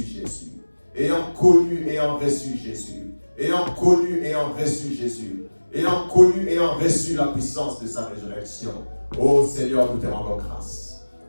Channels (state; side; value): inverted; both; correlation -1.00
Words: Jésus. Ayant connu, ayant reçu Jésus. Ayant connu, ayant reçu Jésus. Ayant connu, ayant reçu la puissance de sa résurrection. Oh Seigneur, nous te rendons grâce.